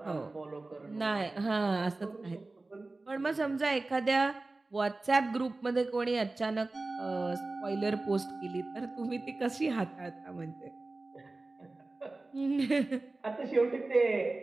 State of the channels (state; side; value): quieter; left; 3.2 dB